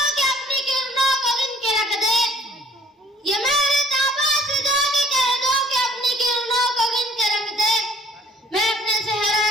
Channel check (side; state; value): both; normal; correlation 0.57